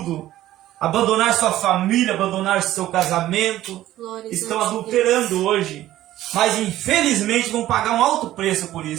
Abandonaram sua família, abandonaram seu casamento. Estão adulterando hoje. Mas infelizmente vão pagar um alto preço por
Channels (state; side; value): quieter; left; 14.2 dB